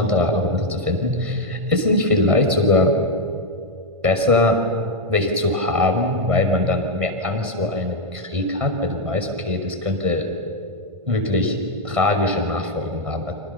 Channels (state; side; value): late; left; 1.5 ms